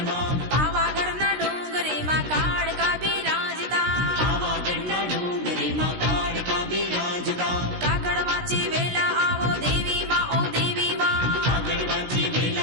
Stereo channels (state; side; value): late; left; 16 ms